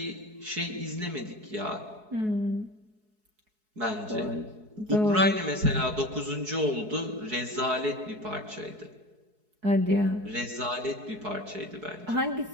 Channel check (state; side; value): late; left; 4.7 ms